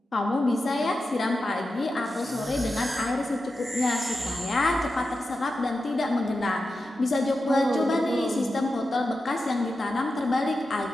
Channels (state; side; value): normal; both; correlation 0.91